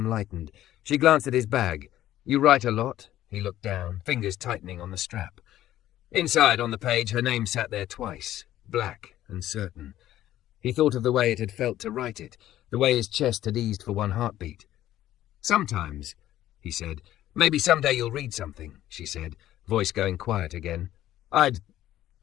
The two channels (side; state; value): right; quieter; 13.3 dB